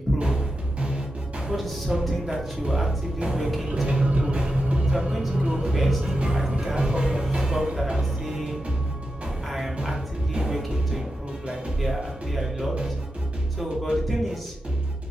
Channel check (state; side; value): normal; both; correlation 0.89